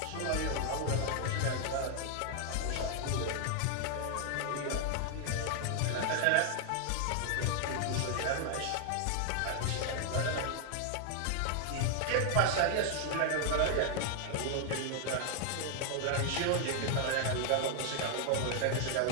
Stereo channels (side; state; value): both; different; correlation 0.00